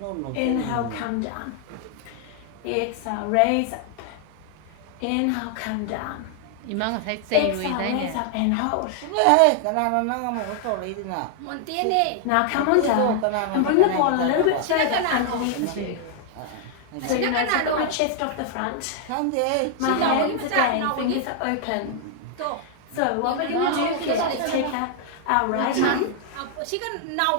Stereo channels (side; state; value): both; different; correlation 0.00